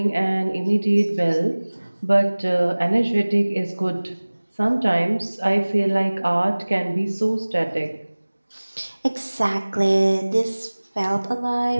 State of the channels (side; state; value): both; inverted; correlation -1.00